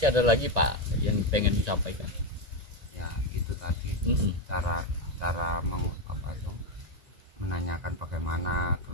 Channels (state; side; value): late; left; 1.9 ms